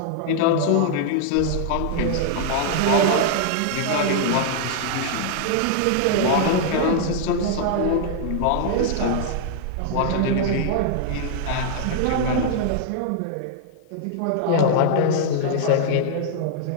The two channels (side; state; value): both; different; correlation -0.01